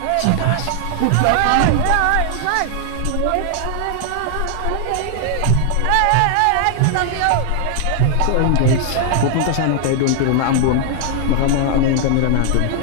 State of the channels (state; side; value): different; both; correlation 0.00